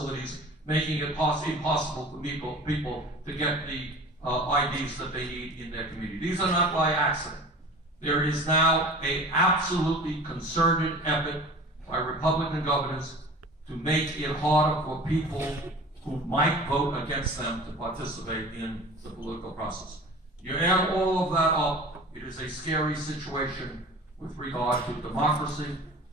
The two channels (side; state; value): both; normal; correlation 0.40